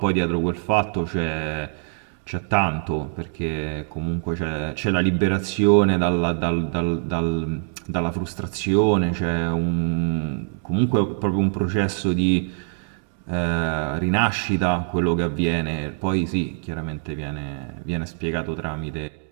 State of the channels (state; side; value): silent; left; digital silence